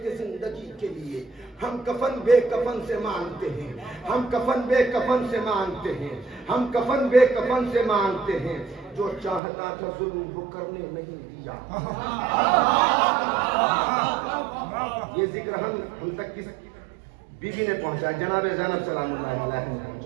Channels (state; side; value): drops out; left; at 9.4 s